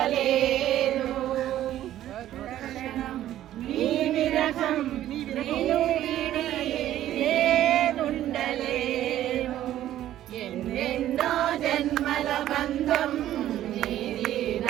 ఎన్నెన్నో జన్మల బంధం నీది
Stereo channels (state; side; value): quieter; left; 12.8 dB